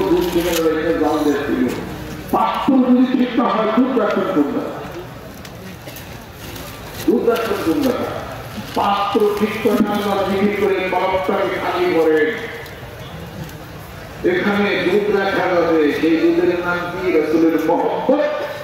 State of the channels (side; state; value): both; identical; correlation 1.00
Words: দুধ কিনে রেখে জাল দেখছিল, পাত্র যদি ঠিক না হয় দুধ রাখবেন কোন জায়গা, দুধ রাখবেন কোন জায়গা, পাত্র ঠিক করে আল্লাহ বিক্রি করে কলমটাকে খালি করেন, এখানে দুধ রাখা যাবে, সেই দুধের নাম কি? রাসূলের মহব্বত,